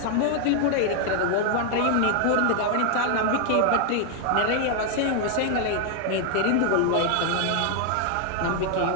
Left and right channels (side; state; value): both; different; correlation 0.00